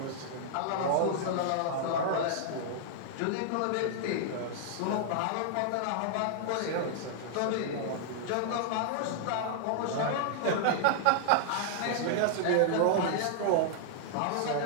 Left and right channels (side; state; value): both; different; correlation -0.01